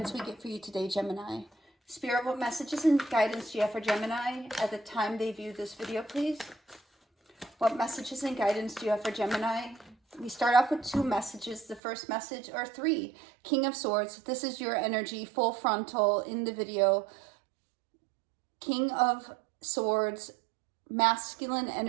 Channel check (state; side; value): drops out; left; at 11.8 s